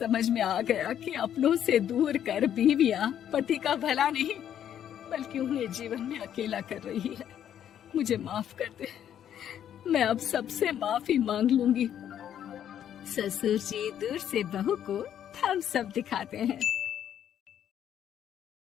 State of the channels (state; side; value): quieter; right; 10.0 dB